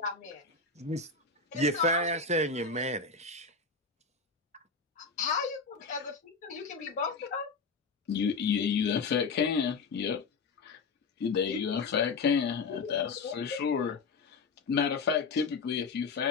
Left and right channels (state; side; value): quieter; right; 4.5 dB